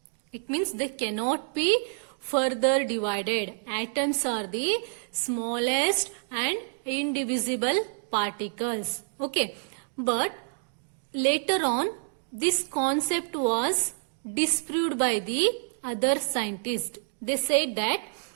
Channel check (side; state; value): left; silent; digital silence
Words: It means they cannot be further divided. Atoms are the smallest and indivisible particles. Okay, but later on this concept was disproved by the other scientists. They said that